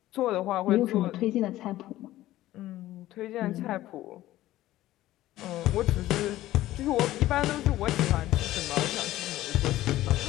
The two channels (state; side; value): quieter; right; 15.3 dB